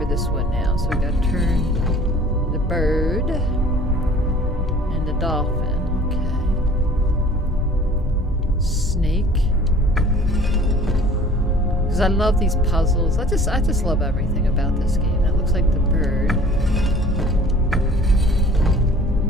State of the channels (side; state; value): both; normal; correlation 0.49